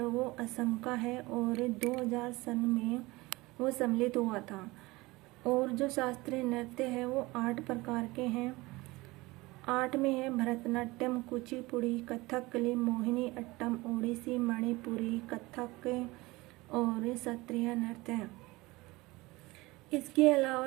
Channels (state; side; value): quieter; left; 21.6 dB